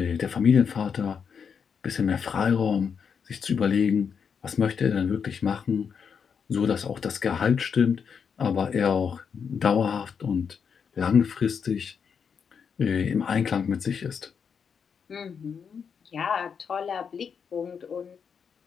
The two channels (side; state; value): right; quieter; 6.6 dB